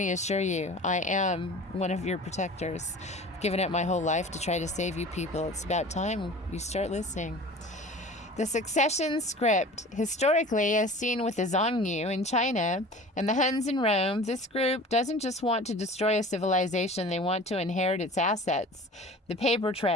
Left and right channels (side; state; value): both; normal; correlation 0.40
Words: assure you, I am one of your protectors. I've given up my whole life to try to save you people. It's about time you start listening. The succession script. Historically, as seen with the Zhongyu in China and the Huns in Rome, this group doesn't just want to destroy a civilization, they want to inherit its assets. The paper